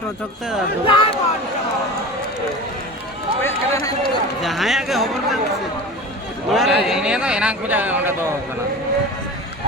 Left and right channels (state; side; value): normal; both; correlation 0.33